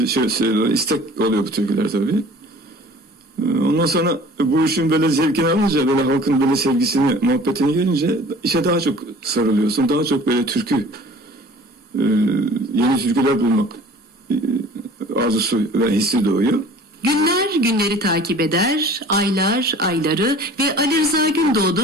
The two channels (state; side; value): normal; both; correlation 0.46